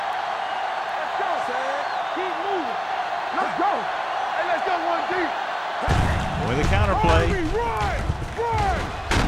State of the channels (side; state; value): both; identical; correlation 1.00